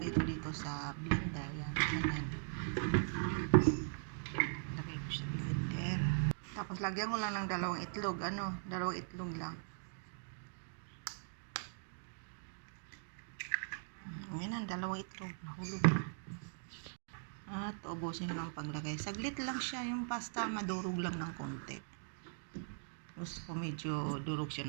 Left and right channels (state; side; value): silent; left; digital silence